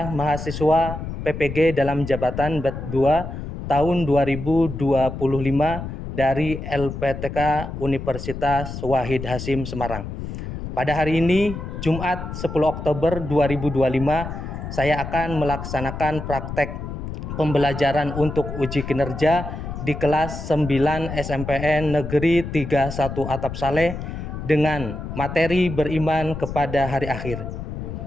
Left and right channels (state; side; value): noise; left; rumble, 7 dB below the sound